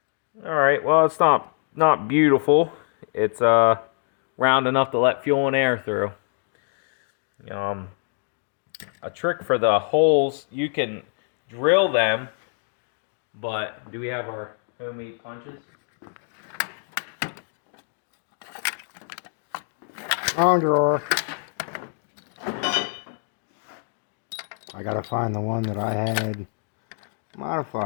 Alright, well, it's not beautiful. It's round enough to let fuel and air through. A trick for the holes, you can drill them, but do we have our homemade punches? On drawer. I gotta find the one that I had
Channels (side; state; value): right; silent; digital silence